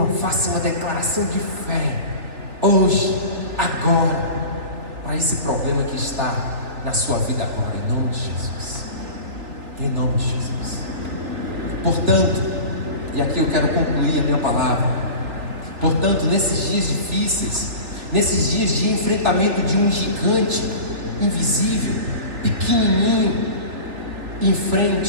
faça uma declaração de fé, hoje, agora, para esse problema que está na sua vida agora, em nome de Jesus. Em nome de Jesus. Portanto, e aqui eu quero concluir a minha palavra. Portanto, nesses dias difíceis, nesses dias de enfrentamento de um gigante invisível, pequenininho,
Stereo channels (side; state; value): left; late; 3.4 ms